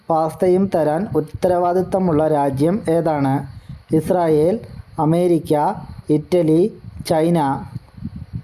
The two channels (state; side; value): identical; both; correlation 1.00